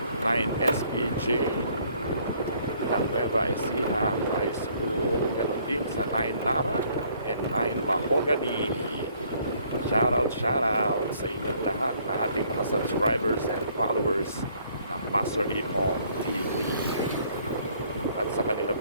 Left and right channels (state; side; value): inverted; both; correlation -0.63